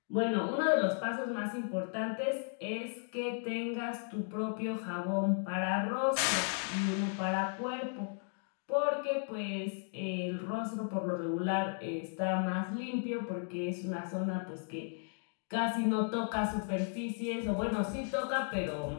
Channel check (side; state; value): right; silent; 54 dB below the other